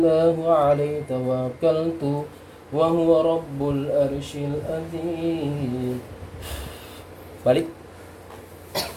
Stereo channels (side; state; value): both; identical; correlation 1.00